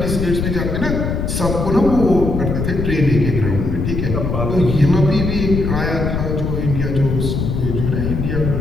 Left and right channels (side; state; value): left; noise; rumble, 2 dB below the sound